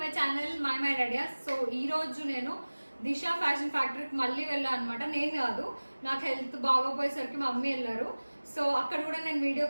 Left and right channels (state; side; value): inverted; both; correlation -1.00